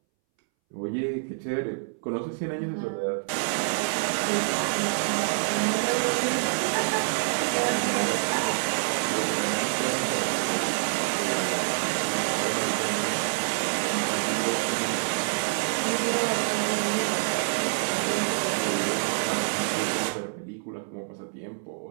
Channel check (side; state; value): left; silent; 60 dB below the other